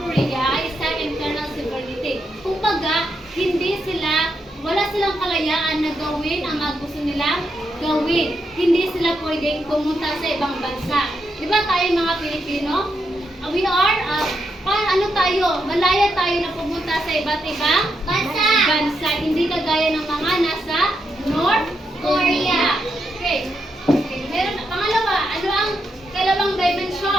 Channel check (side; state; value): both; normal; correlation 0.82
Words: ay isang internal sovereignty. Kumbaga, wala silang kalayaan na gawin ang mga gusto nilang gawin. Hindi sila pwedeng pumunta sa ibang bansa. Di ba tayo mga Pilipino? We are, malaya tayo na pumunta sa iba't ibang bansa. Hindi kagaya ng mga nasa North Korea. Okay. Meron, pangalawa, ano ang kalawang